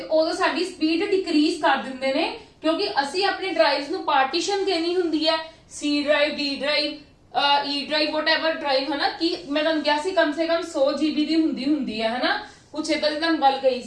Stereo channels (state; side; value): identical; both; correlation 1.00